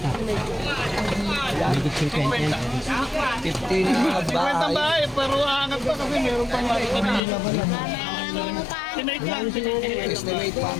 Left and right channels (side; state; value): right; drops out; at 7.2 s